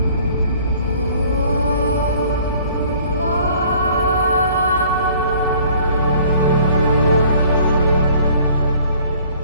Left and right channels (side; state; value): both; inverted; correlation -0.54